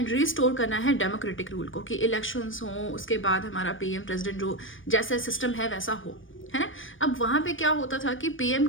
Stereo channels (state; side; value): late; right; 0.57 ms